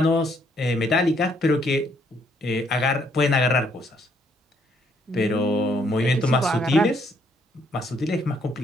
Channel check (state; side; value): normal; both; correlation 0.69